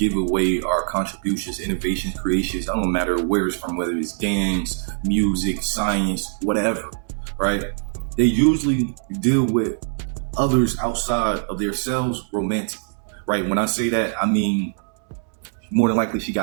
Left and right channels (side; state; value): left; silent; 64 dB below the other